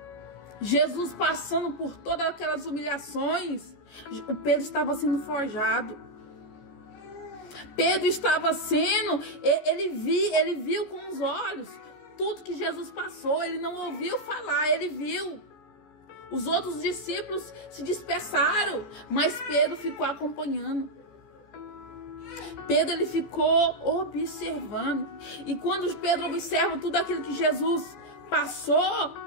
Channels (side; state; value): right; late; 14 ms